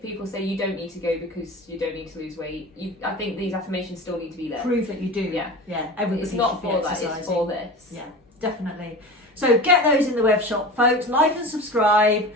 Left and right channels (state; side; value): normal; both; correlation 0.33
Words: people say you don't need to go because you don't need to lose weight, I think these affirmations still need to be there. Prove that you do. Yeah. Yeah. Everybody it's not should for be that, exercising. it's for this. Yeah, definitely. So get those in the web shop, folks. Like and subscribe